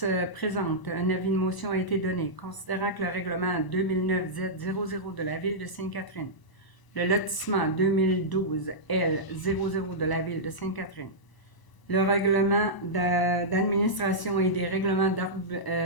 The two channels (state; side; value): late; right; 1.0 ms